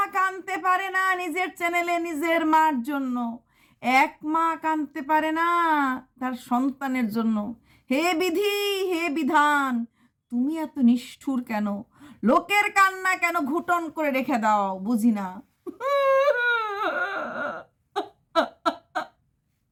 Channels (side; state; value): both; identical; correlation 1.00